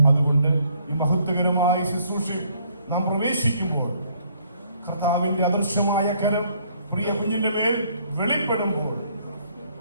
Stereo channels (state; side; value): inverted; both; correlation -0.65